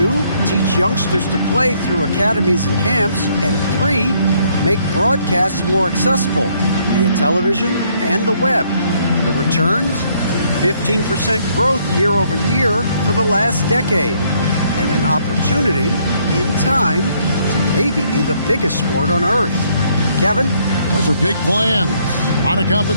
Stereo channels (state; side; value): inverted; both; correlation -0.67